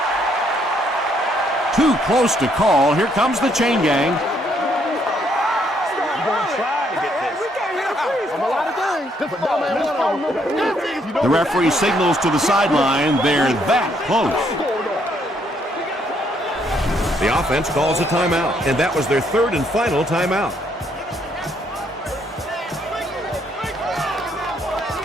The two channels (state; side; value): normal; both; correlation 0.70